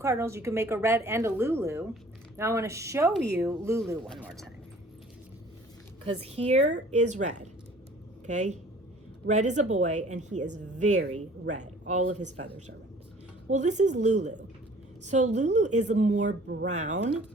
You can make a red and a Lulu. Now I want to show you Lulu one more time, because here is red. Okay, red is a boy and he is very red. All of his feathers are red. Well, this is Lulu. So Lulu is more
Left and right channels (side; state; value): both; normal; correlation 0.51